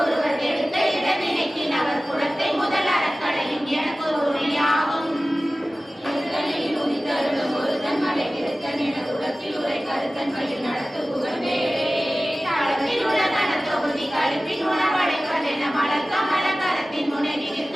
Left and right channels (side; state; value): both; normal; correlation 0.97